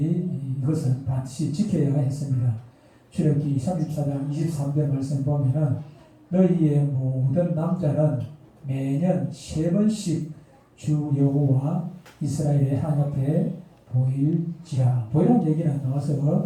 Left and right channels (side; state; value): both; identical; correlation 1.00